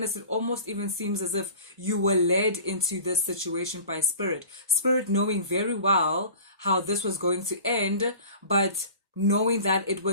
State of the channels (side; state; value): both; inverted; correlation -0.40